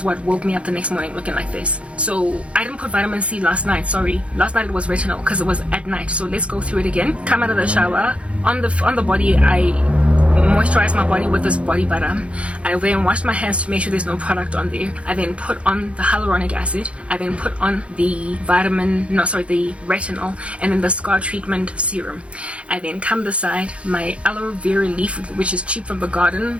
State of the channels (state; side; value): late; left; 0.061 ms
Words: what woke me up the next morning looking like this. So I didn't put vitamin C last night. Sorry, last night it was retinol because it was at night. So let's go through it again. Come out of the shower. On the body, I moisturize my body with this body butter. I then wash my hands to make sure there's no product on there. I then put on the hyaluronic acid. I then put on the retinol, and then the scar treatment serum. I then come beside my aloe vera leaf, which is cheap from the garden,